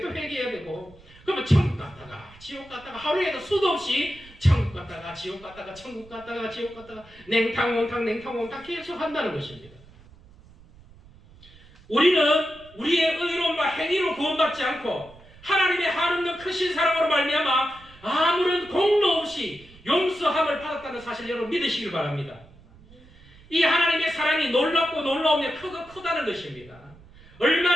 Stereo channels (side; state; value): right; noise; rumble, 24 dB below the sound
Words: 또 회개해야 되고 그러면 천국 갔다가 지옥 갔다가 하루에도 수도 없이 천국 갔다가 지옥 갔다가 천국 갔다가 지옥 갔다가 냉탕 온탕 계속 한다는 것입니다. 우리는 우리의 의로움과 행위로 구원받지 않고 하나님의 한없는 크신 사랑으로 말미암아 아무런 공로 없이 용서함을 받았다는 사실 여러분 믿으시길 바랍니다. 이 하나님의 사랑이 놀랍고 놀라우며 크고 크다는 것입니다.